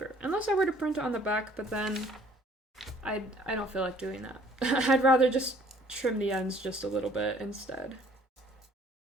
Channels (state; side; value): normal; both; correlation 0.57